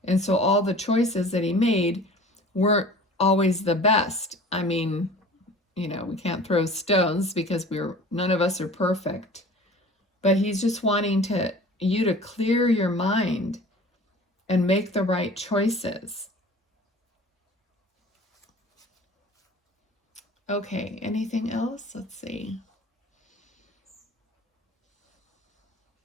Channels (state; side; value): normal; both; correlation 0.43